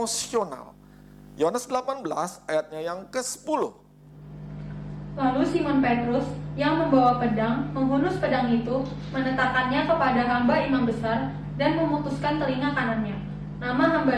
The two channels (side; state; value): both; identical; correlation 1.00